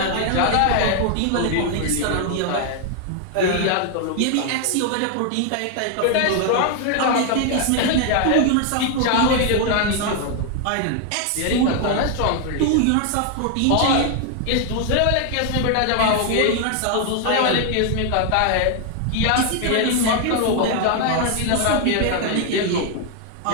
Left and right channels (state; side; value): different; both; correlation 0.00